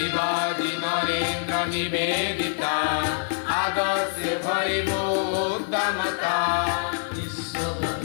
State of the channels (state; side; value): silent; right; digital silence